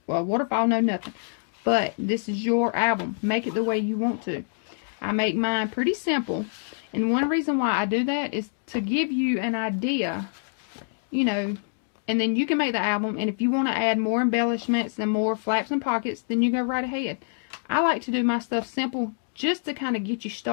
waterfall, no nothing. But this is your album. Make it the way you want to. I make mine pretty simple, and one reason why I do that is to give you an idea, you know, and then you can make the album, and if you want to add more embellishments and more flaps and pockets, then you go right ahead. I like to do my stuff simple just to kind of get you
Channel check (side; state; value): right; silent; digital silence